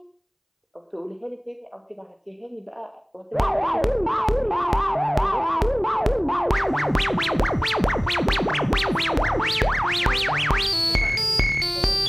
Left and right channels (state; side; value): identical; both; correlation 1.00